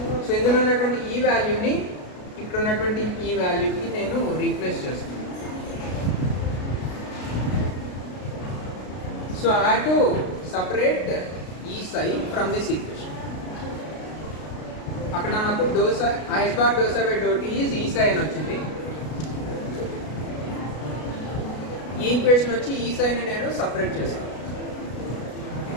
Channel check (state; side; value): late; right; 33 ms